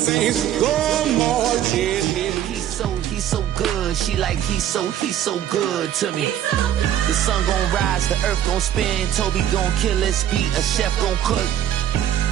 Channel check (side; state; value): left; quieter; 11.0 dB